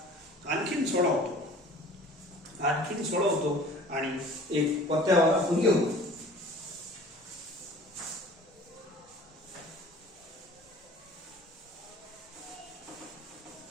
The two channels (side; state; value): both; normal; correlation 0.46